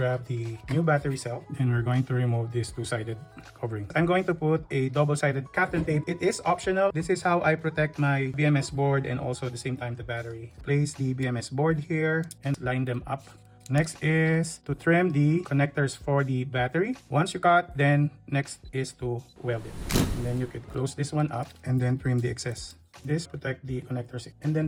the new battery cell. And we're going to remove this two-sided covering. I'm going to put a double-sided Kapton tape. It is optional. This is how I protect my BMS board and also at the same time the battery. Place the BMS board here and line them up. Next is to trim the connectors for the battery. Once you cut, then next is to weld it. And then you could close this one up and then trim the excess. This protect the connectors. And then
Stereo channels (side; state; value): both; identical; correlation 1.00